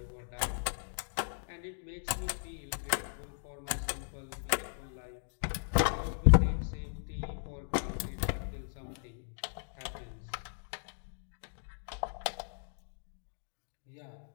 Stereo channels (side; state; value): right; silent; digital silence